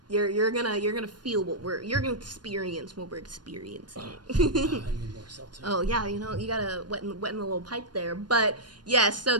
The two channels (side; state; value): left; late; 0.70 ms